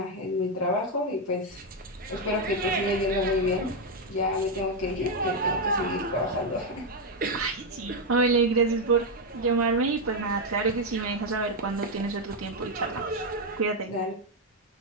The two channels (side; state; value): both; normal; correlation 0.03